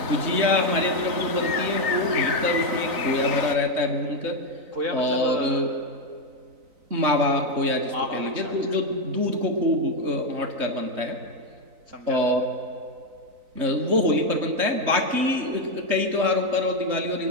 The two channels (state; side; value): late; left; 3.9 ms